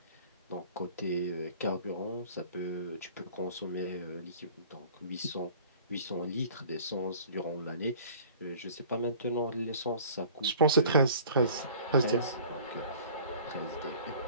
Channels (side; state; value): both; inverted; correlation -0.48